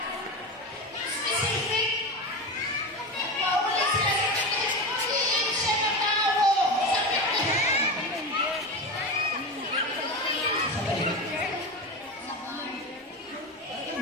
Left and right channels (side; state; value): both; normal; correlation 0.23